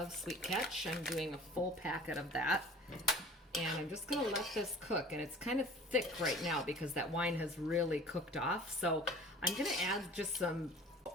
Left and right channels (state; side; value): normal; both; correlation 0.45